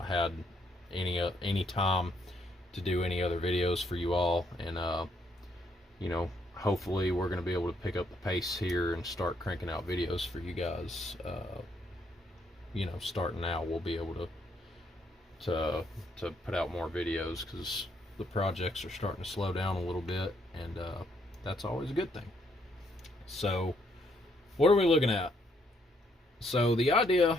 had any time to do any other videos for you all. And you know, hopefully we're going to be able to pick up the pace here and start cranking out videos for you guys. You know, starting now, we'll be able to put out more videos because the projects are starting to slow down a little bit, and that's always a good thing. So what are we looking at? So the idea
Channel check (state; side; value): normal; both; correlation 0.72